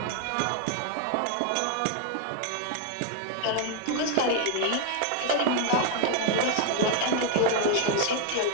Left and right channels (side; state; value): both; different; correlation 0.00